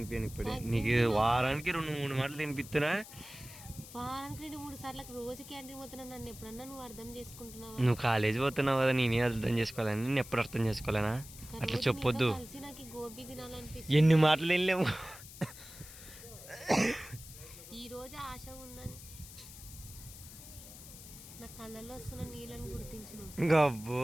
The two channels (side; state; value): left; noise; hiss, 16 dB below the sound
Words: ఇప్పుడే నీకు వారానికి 2-3 మాటలు తినిపిస్తున్నా. వారానికి 2-3 సార్లు రోజు క్యాంటీన్ పోతున్నా, నన్ను ఎప్పుడన్నా నువ్వు అర్థం చేసుకుంటున్నావా? నువ్వు కాలేజ్ పోతున్నావు కదా, నేనే అర్థం చేసుకోవాలని. నేను ఎప్పుడు అర్థం చేసుకోలేనా? అట్లా చెప్పొద్దు. ఎన్ని మాటలు వెళ్ళాము. ఈ రోజు ఆశ ఉందని నా కళ్ళల్లో వస్తున్న నీళ్ళని గుర్తించు. గబ్బో